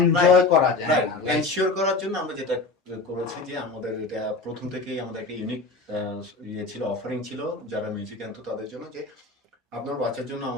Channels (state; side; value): quieter; right; 3.6 dB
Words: করা যায় রাইট, না। এনশিওর করার জন্য আমরা যেটা করেছি যে আমাদের এটা প্রথম থেকেই আমাদের একটা ইউনিক ইয়ে ছিল, অফারিং ছিল যারা মিউজিক আনতো তাদের জন্য, যে আপনার বাচ্চার জন্য